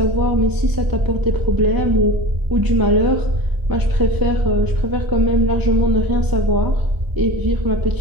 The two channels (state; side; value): late; left; 1.0 ms